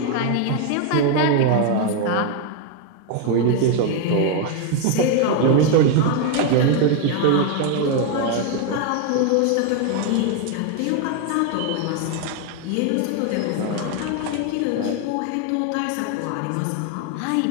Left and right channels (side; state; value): both; different; correlation 0.01